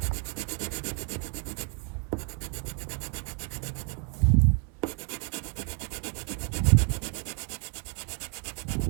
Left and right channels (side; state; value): left; quieter; 37.3 dB